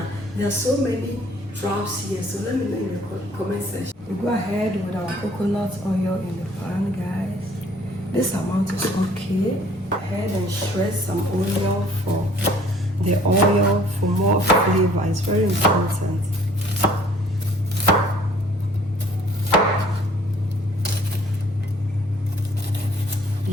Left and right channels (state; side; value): normal; both; correlation 0.57